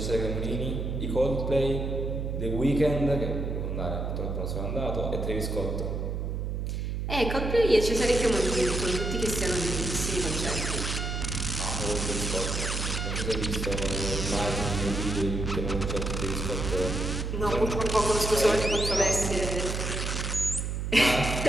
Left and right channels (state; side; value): noise; right; hum, 2 dB below the sound